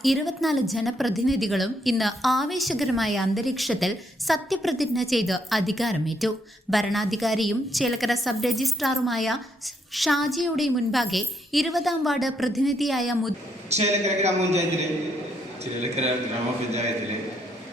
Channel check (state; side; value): normal; both; correlation 0.74